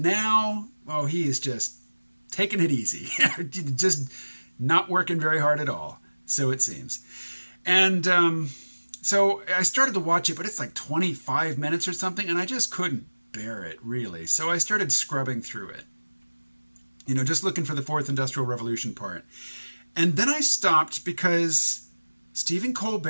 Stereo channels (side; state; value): both; inverted; correlation -1.00